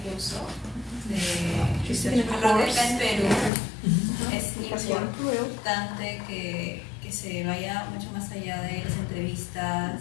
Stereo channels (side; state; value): right; drops out; at 3.5 s